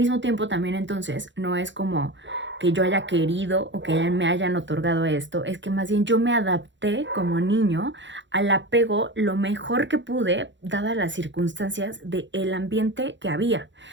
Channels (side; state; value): left; late; 0.54 ms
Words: tiempo también entonces no es como que yo haya querido o que me hayan otorgado esto, es que más bien yo me adapté como niño al apego lo mejor que pude, dadas las circunstancias del ambiente que había